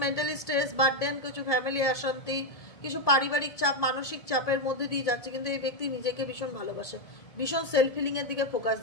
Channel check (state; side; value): late; right; 1.8 ms